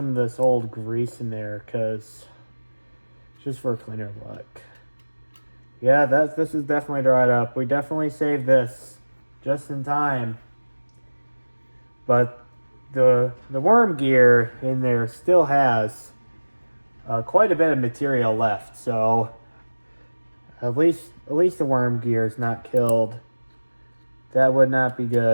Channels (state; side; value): inverted; both; correlation -1.00